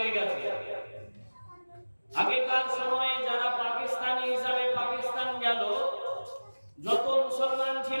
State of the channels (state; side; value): inverted; both; correlation -1.00